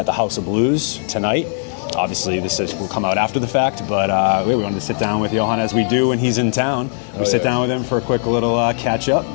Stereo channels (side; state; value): right; silent; digital silence